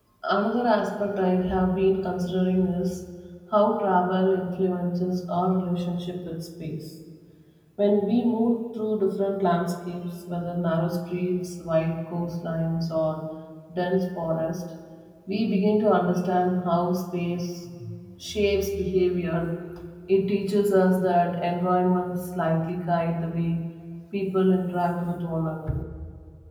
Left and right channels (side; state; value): both; identical; correlation 1.00